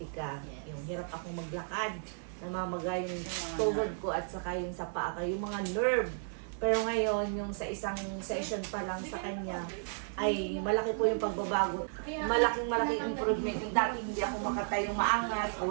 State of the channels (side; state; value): left; silent; 55 dB below the other